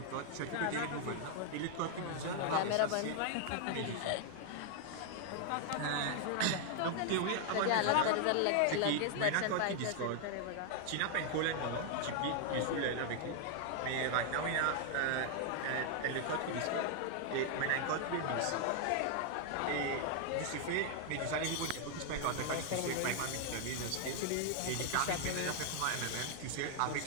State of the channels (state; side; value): different; both; correlation 0.00